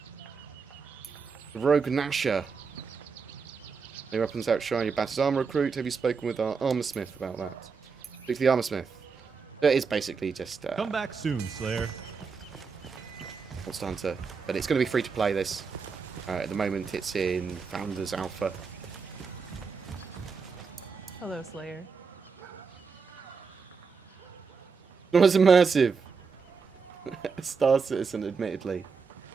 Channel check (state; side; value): quieter; left; 5.3 dB